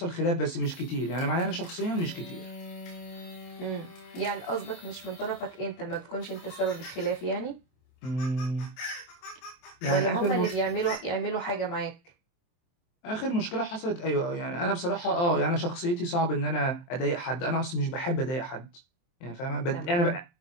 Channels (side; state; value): right; late; 23 ms